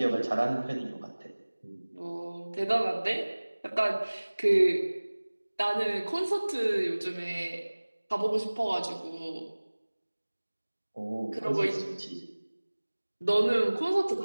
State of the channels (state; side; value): inverted; both; correlation -1.00